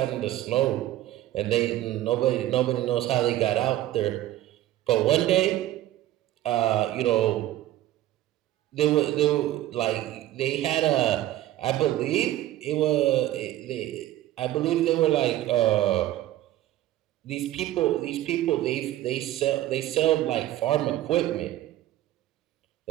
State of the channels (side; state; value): left; quieter; 14.2 dB